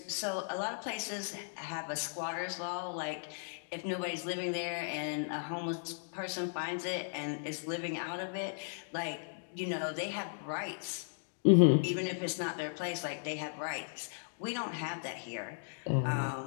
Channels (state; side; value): silent; right; digital silence